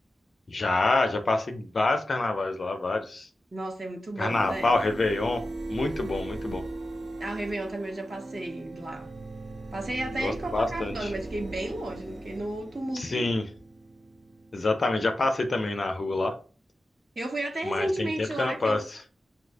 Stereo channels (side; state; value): both; normal; correlation 0.92